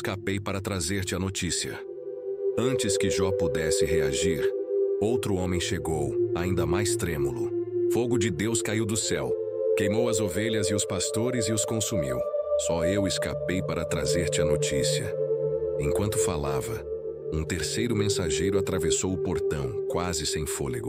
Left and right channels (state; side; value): identical; both; correlation 1.00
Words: para trazer-te a notícia. Antes que Jó pudesse reagir, outro homem chegou, ainda mais trêmulo. Fogo de Deus caiu do céu, queimou as ovelhas e os pastores e os consumiu. Só eu escapei para trazer-te a notícia. Enquanto falava, um terceiro mensageiro atravessou o portão, quase sem